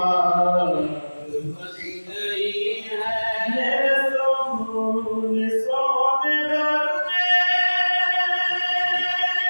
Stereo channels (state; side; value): inverted; both; correlation -1.00